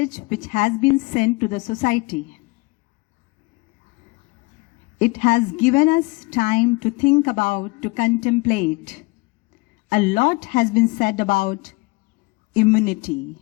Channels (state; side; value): quieter; right; 25.5 dB